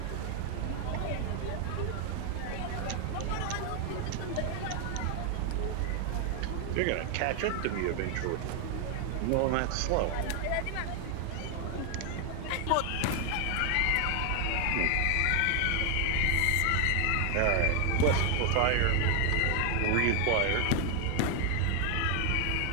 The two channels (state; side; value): different; both; correlation 0.00